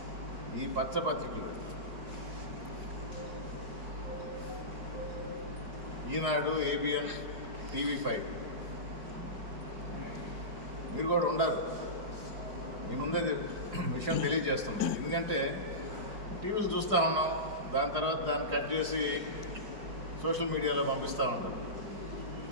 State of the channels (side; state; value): left; late; 4.8 ms